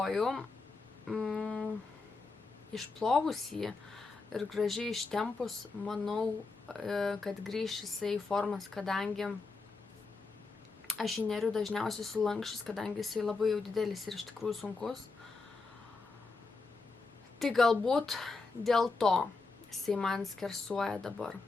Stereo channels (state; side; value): quieter; right; 3.9 dB